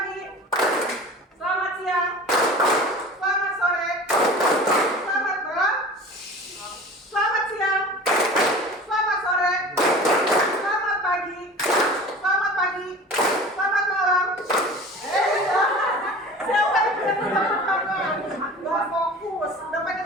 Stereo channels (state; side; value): normal; both; correlation 0.39